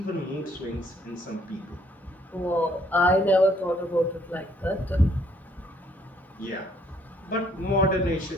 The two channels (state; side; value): normal; both; correlation 0.65